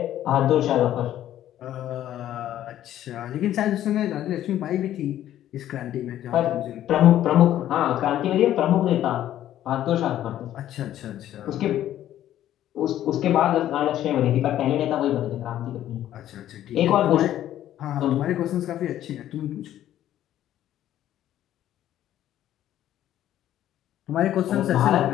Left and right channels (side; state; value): right; quieter; 12.3 dB